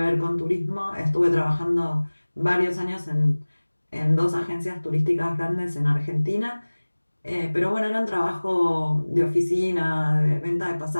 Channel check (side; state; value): both; inverted; correlation -1.00